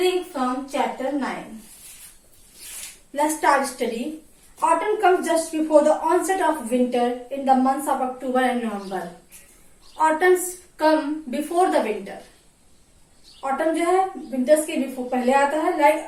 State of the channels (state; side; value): identical; both; correlation 1.00